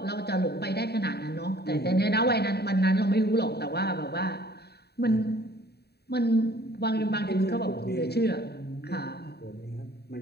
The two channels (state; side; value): late; right; 0.47 ms